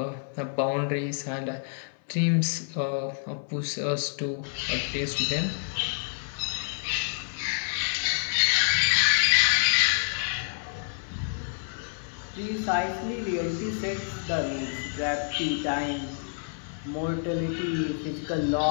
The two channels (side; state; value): right; silent; 57 dB below the other